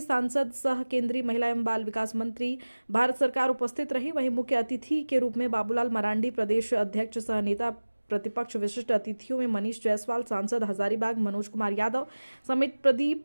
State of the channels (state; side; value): inverted; both; correlation -1.00